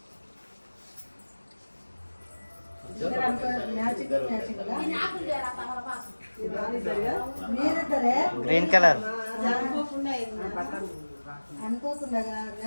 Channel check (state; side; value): inverted; both; correlation -1.00